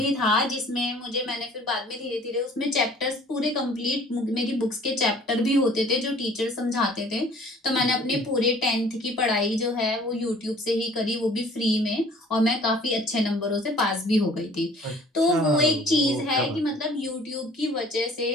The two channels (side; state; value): both; normal; correlation 0.52